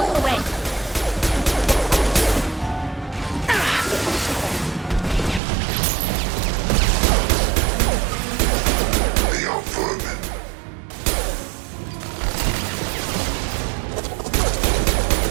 goes away. They are vermin.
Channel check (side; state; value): left; drops out; at 5.4 s